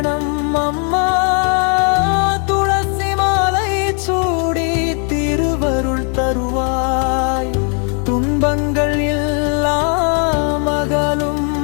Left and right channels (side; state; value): right; quieter; 39.5 dB